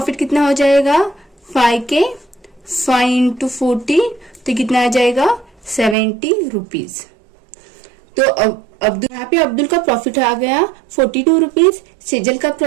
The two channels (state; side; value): drops out; left; at 6.0 s